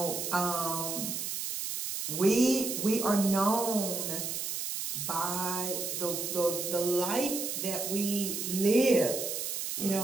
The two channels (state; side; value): noise; right; hiss, 3 dB below the sound